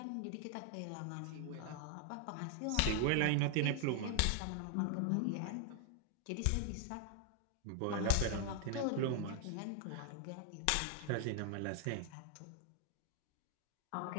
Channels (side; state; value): both; different; correlation 0.00